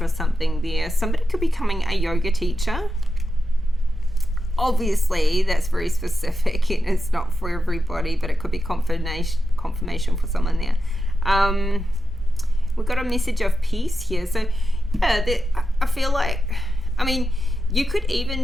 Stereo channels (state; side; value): normal; both; correlation 0.89